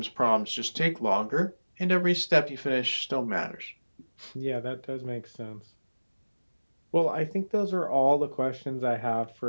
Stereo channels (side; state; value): both; inverted; correlation -1.00